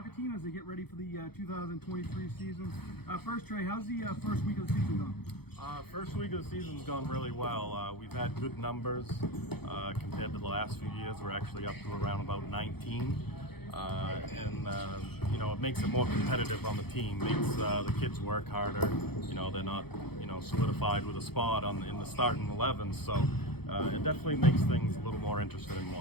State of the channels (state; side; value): late; right; 0.97 ms